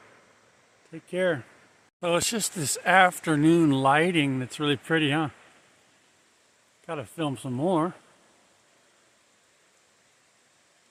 Take care. So it's just this afternoon lighting that's really pretty, huh? Gotta film some more.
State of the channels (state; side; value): identical; both; correlation 1.00